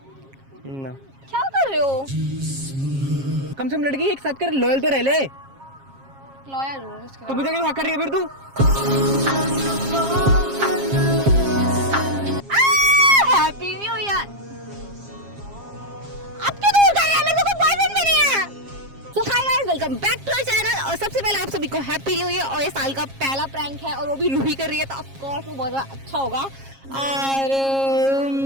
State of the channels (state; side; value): late; left; 7.4 ms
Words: ना क्या कर रहे हो? कम से कम लड़की एक साथ कर, लॉयल तो रह ले। लॉयल हूँ इसके तो बाद। मुझे क्यों कर रही है फिर तू? Happy new year. अब क्यों दूर कर रहे हैं? मेरे को कोई बॉयफ्रेंड भी नहीं है। So hi guys, welcome back to our channel। और सबसे पहले आप सभी को हैप्पी न्यू ईयर। और ये साल का पहला प्रैंक है और वो भी रूही कर रही है, तो ऑफ कोर्स वो बहुत ज़्यादा अच्छा होगा। और